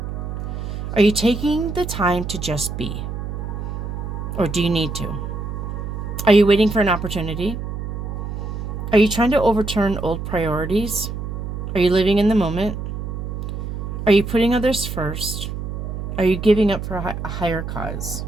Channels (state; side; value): noise; right; hum, 5 dB below the sound